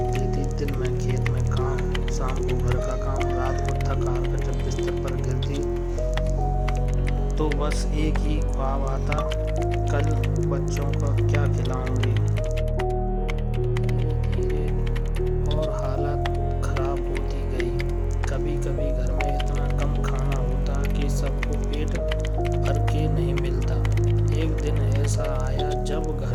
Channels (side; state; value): both; identical; correlation 1.00